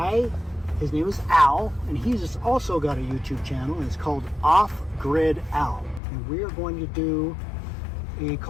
His name is Al, and he's also got a YouTube channel, and it's called Off Grid Al, and we are going to do a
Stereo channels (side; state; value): right; drops out; at 6.0 s